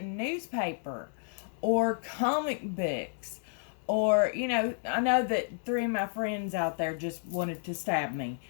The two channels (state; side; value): silent; right; digital silence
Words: Or comic books. Or, I know that 3 of my friends out there just wanted to stab me